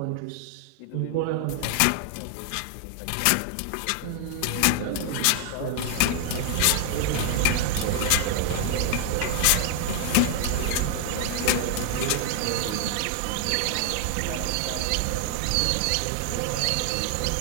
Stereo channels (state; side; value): different; both; correlation 0.00